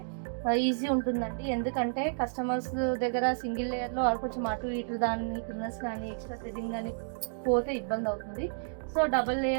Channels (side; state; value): left; silent; digital silence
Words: ఈజీ ఉంటుందండి. ఎందుకంటే కస్టమర్స్ దగ్గర సింగిల్ లేయర్లో కొంచెం అటు ఇటు దాని కిందస్ కానీ ఎక్స్ట్రా థ్రెడింగ్ కానీ పోతే ఇబ్బంది అవుతుంది. సో డబల్